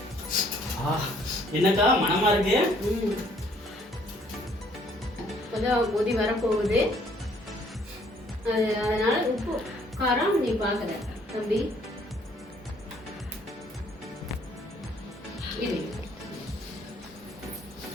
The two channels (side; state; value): both; normal; correlation 0.63